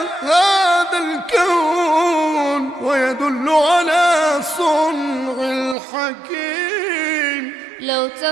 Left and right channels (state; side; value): drops out; left; at 5.8 s